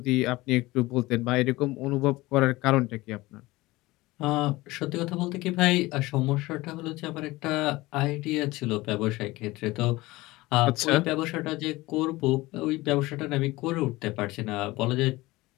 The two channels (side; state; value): right; quieter; 20.0 dB